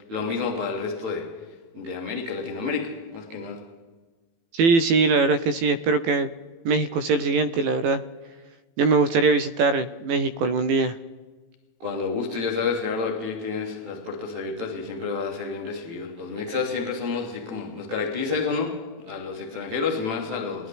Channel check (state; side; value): late; left; 18 ms